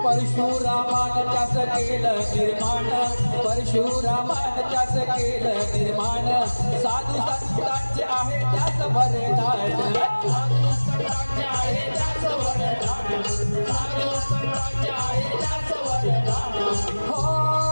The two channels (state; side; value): inverted; both; correlation -1.00